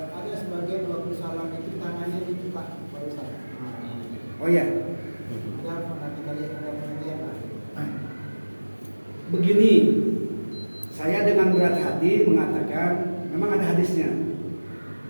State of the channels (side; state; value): both; inverted; correlation -1.00